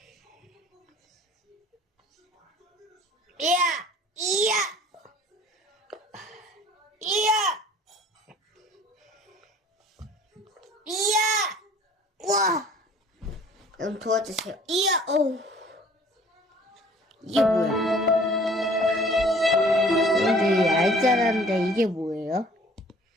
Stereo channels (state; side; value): normal; both; correlation 0.51